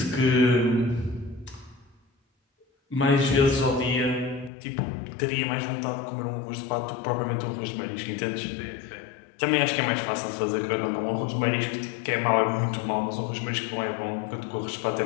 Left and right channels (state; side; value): drops out; right; at 4.5 s